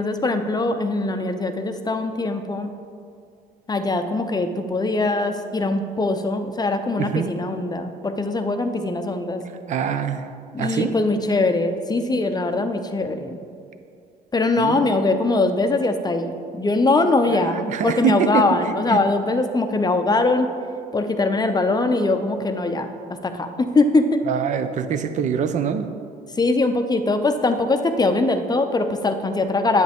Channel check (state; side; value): normal; both; correlation 0.60